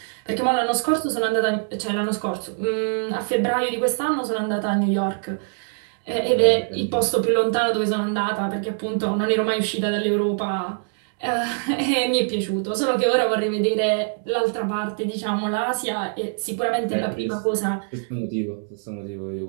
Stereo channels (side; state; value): left; silent; 63 dB below the other